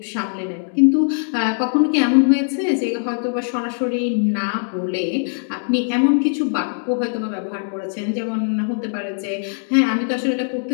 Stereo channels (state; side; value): silent; right; 65 dB below the other